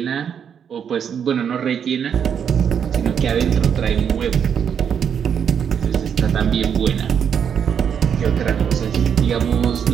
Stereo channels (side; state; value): left; quieter; 7.9 dB